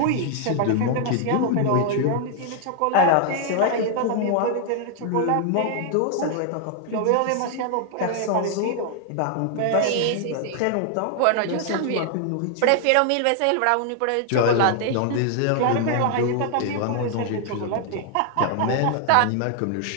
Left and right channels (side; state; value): both; different; correlation 0.00